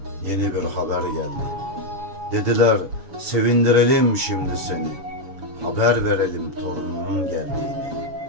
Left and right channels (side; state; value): left; late; 7.0 ms